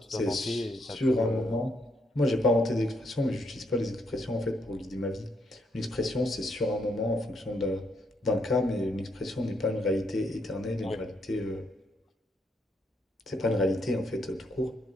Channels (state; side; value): normal; both; correlation 0.75